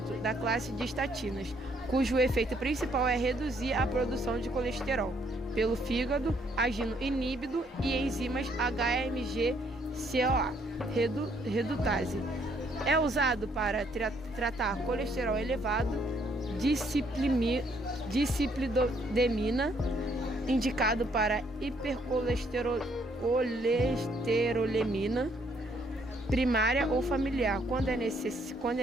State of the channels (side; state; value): both; normal; correlation 0.68